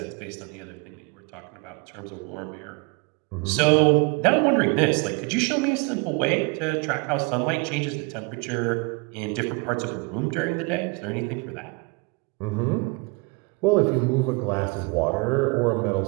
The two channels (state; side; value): quieter; left; 29.3 dB